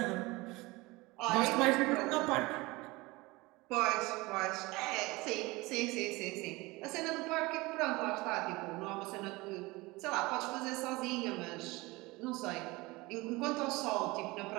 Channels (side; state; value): left; quieter; 22.4 dB